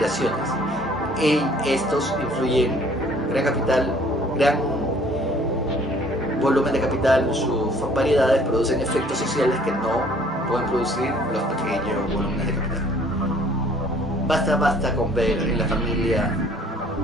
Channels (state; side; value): normal; both; correlation 0.57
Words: Estos influyen gran volumen de capital, sus variedades producen efectos sociales que no pueden producir los pequeños volúmenes de capital. Basta con ver en la familia,